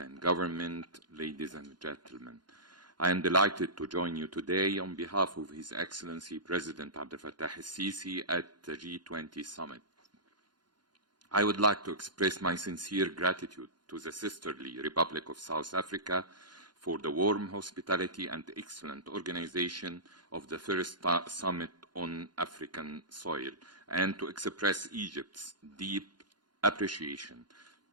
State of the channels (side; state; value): left; late; 0.71 ms